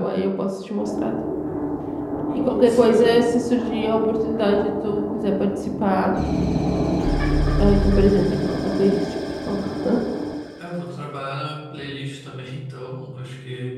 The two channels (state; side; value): identical; both; correlation 1.00